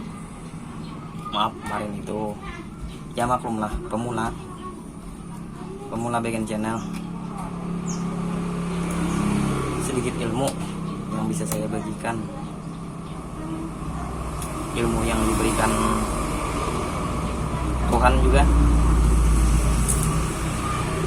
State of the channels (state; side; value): identical; both; correlation 1.00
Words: Maaf kemarin itu, ya maklumlah, pemula bikin channel, sedikit ilmu yang bisa saya bagikan, ilmu yang diberikan Tuhan juga,